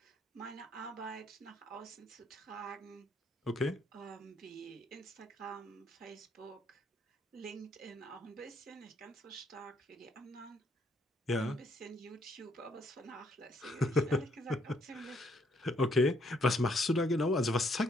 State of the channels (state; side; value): normal; both; correlation 0.69